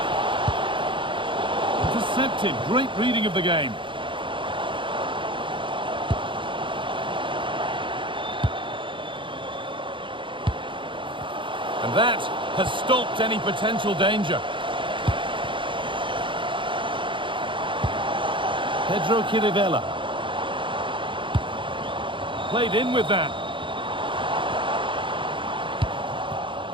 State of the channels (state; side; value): late; left; 0.24 ms